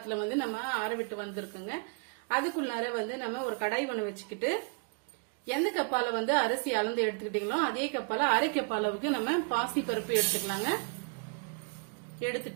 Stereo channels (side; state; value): left; quieter; 36.7 dB